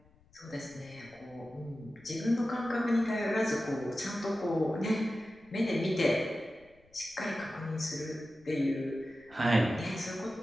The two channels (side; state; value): left; noise; rumble, 30 dB below the sound